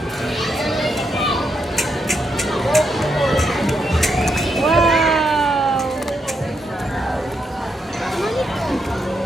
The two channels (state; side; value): normal; both; correlation 0.80